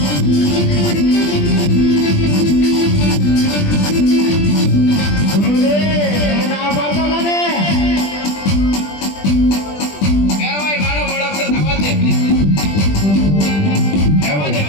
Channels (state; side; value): late; right; 20 ms